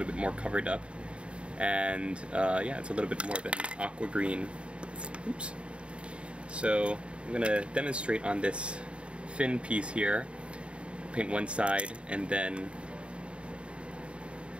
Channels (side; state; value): left; late; 0.058 ms